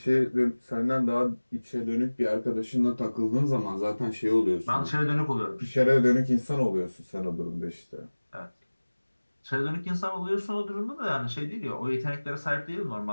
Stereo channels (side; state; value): both; inverted; correlation -1.00